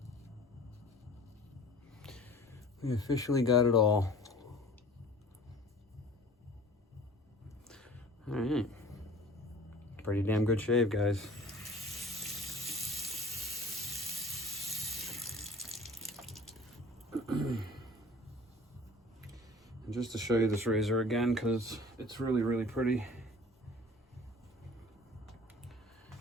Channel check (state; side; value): normal; both; correlation 0.46